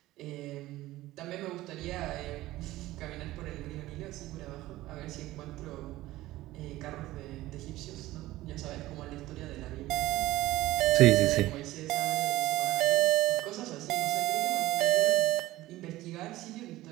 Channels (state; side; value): quieter; left; 16.8 dB